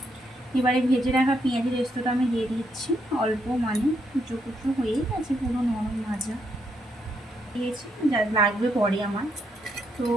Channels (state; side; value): normal; both; correlation 0.77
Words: এবারে ভেজে রাখা পেঁয়াজের রেস্তোটা আমি দিয়ে দিচ্ছি অল্প, মানে কুচো কুচো হয়েই গেছে, পুরো নরম ভাজা দিয়েছি, যা লাগবে পরে আমার। তো